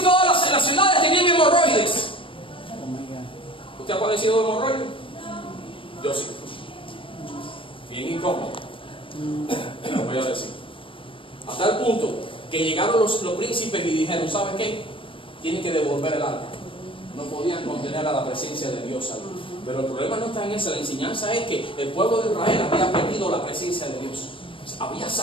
todas las ciudades tenían hemorroides. ¿Usted ha padecido de hemorroides? Yo sí. Bien incómodo. Lo voy a decir. A tal punto que llegaron los príncipes y dijeron, ¿sabes qué? Tienen que devolver el arca. No podían contener a la presencia de Dios ahí. Pero el problema no está en eso. La enseñanza es que el pueblo de Israel había perdido la presencia de Dios. Había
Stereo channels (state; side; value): late; right; 0.25 ms